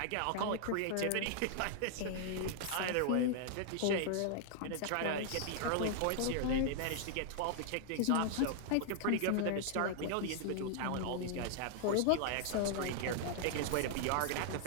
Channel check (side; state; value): both; different; correlation -0.01